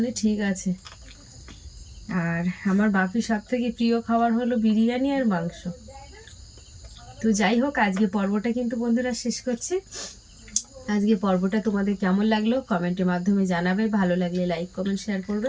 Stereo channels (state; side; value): identical; both; correlation 1.00